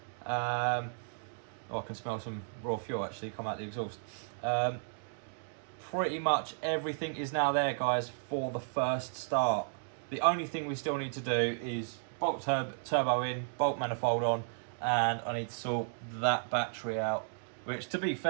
I can smell some raw fuel actually come out the exhaust. Pretty much everything is now there, guys, for the first start. The only thing we still need to do is bolt turbo in, bolt manifold on, and I need to sort that battery out. Which, to be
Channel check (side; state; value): left; silent; digital silence